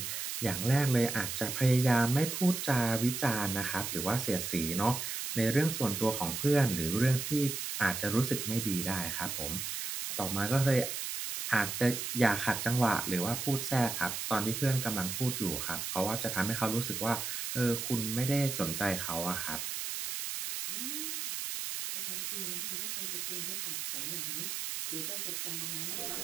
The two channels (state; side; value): noise; right; hiss, 4 dB below the sound